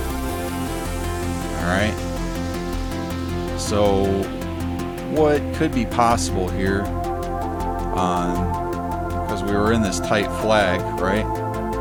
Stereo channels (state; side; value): identical; both; correlation 1.00